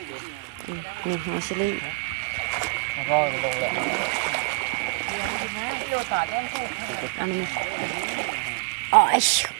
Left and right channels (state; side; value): quieter; left; 26.9 dB